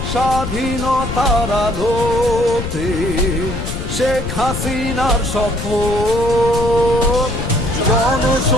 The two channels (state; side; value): noise; left; rumble, 5 dB below the sound